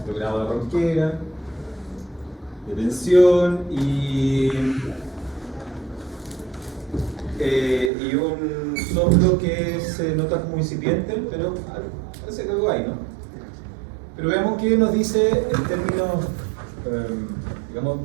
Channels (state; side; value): drops out; left; at 7.9 s